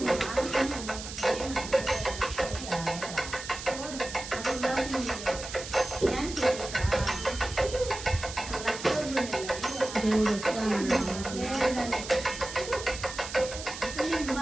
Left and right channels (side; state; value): right; noise; hiss, 10 dB below the sound